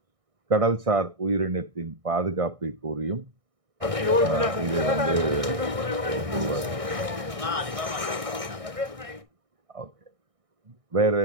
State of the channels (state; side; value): late; left; 1.6 ms